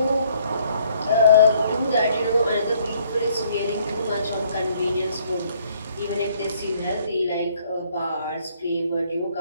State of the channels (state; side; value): inverted; both; correlation -0.63